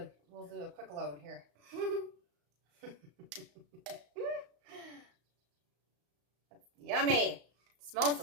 we'll do a quick load here. Yummy. Smells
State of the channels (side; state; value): left; late; 35 ms